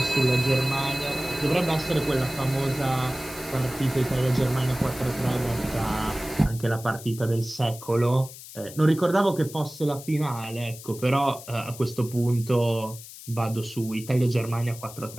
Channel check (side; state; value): left; noise; hiss, 15 dB below the sound